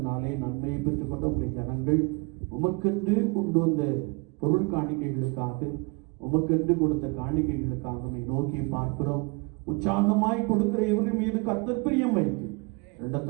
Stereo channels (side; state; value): left; quieter; 29.0 dB